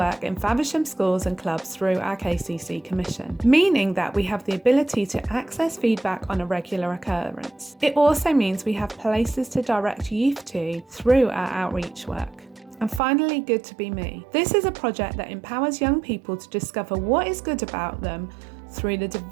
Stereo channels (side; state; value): left; drops out; at 13.0 s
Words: in Faversham schools and clubs through our KCC Commission, meaning that we have the ability to access feedback on a regular occurrence. It also means we have places to direct youth to through our outreach work. And finally, Good to Be Me. This is a project that empowers young people to discover what is good about them through the